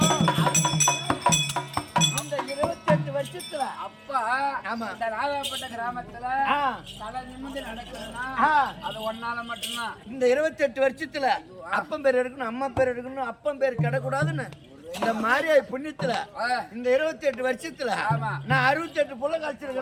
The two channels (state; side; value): identical; both; correlation 1.00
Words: அந்த 28 வருஷத்துல அப்பா இந்த ராதாப்பட்ட கிராமத்துல தலை நிமிந்து நடக்கணும்னா அது ஒன்னால மட்டும்தான். இந்த 28 வருஷத்துல அப்பன் பேர் எடுக்கணும், அம்மா பேர் எடுக்கணும், அப்பன் பேர் கிடக்கூடாதுன்னு இந்த மாதிரி புண்ணியத்துல இந்த 28 வருஷத்துல நான் 68 புள்ள